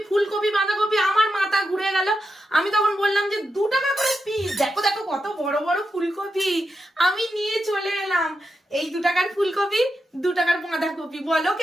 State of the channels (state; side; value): normal; both; correlation 0.87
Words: ফুলকপি বাঁধাকপি, আমার মাথা ঘুরে গেল। আমি তখন বললাম যে 2 টাকা করে পিস, দেখো দেখো কত বড় বড় ফুলকপি। আমি নিয়ে চলে এলাম এই 2 টাকার ফুলকপি, 2 টাকার বাঁধাকপি, বলো